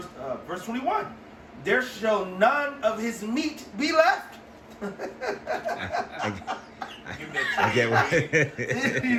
21. There shall none of his meat be left. I get what. Did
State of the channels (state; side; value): identical; both; correlation 1.00